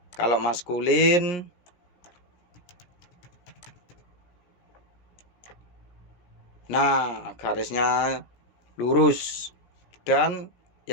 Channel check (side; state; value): right; late; 17 ms